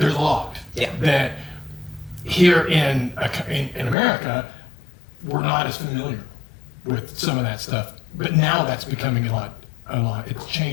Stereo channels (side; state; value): right; drops out; at 4.0 s